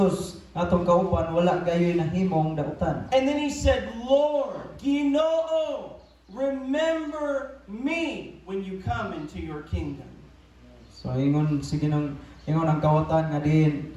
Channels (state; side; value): identical; both; correlation 1.00